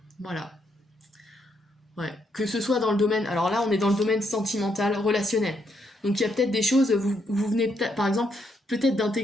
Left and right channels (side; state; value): both; normal; correlation 0.76